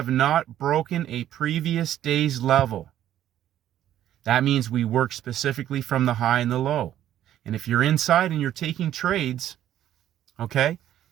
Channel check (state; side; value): quieter; left; 11.8 dB